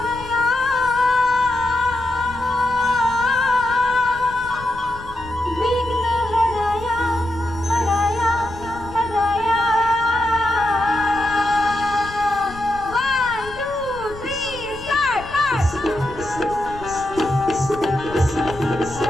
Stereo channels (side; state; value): left; noise; rumble, 15 dB below the sound